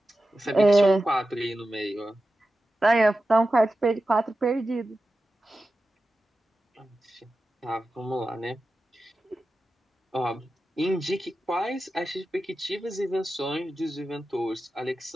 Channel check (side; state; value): both; normal; correlation 0.92